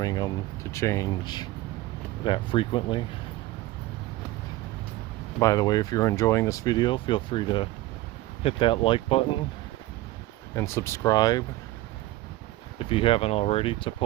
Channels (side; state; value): left; quieter; 17.2 dB